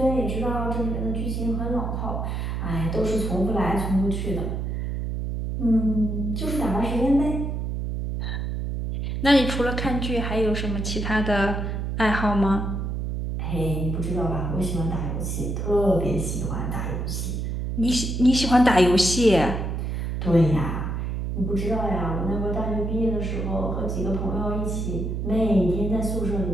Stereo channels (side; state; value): right; noise; hum, 2 dB below the sound